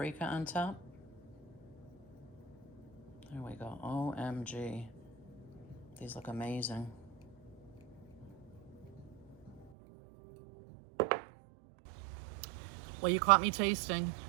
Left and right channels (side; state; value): left; drops out; at 9.7 s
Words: on top. There we go, OMG. These look amazing. Well, you caught me tasting.